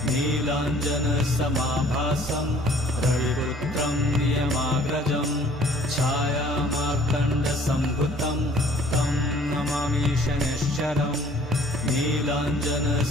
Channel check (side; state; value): both; normal; correlation 0.55